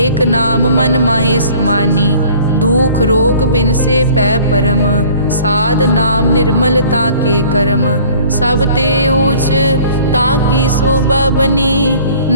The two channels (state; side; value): inverted; both; correlation -0.51